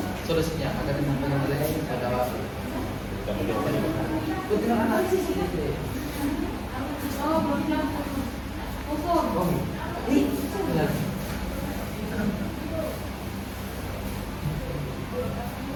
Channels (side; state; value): both; identical; correlation 1.00